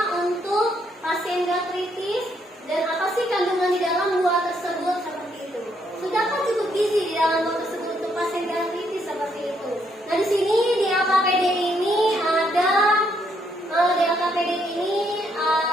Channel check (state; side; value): normal; both; correlation 0.73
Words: untuk pasien gastritis dan apa sih kandungan di dalam buah tersebut, seperti itu. Sudahkah cukup gizi di dalam buah tersebut untuk pasien gastritis, seperti itu. Nah, di sini di LKPD ini